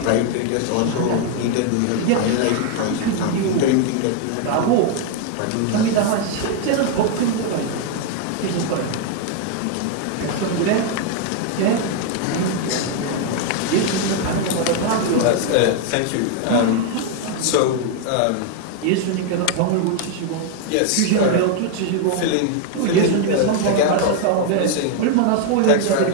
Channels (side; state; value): both; different; correlation 0.01